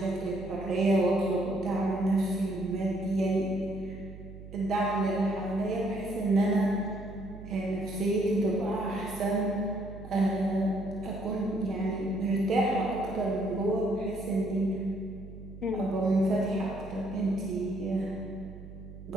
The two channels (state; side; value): noise; right; hum, 14 dB below the sound